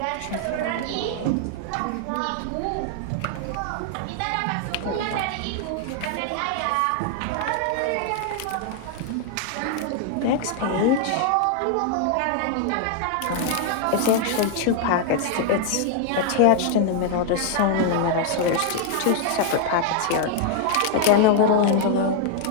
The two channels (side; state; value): both; different; correlation 0.00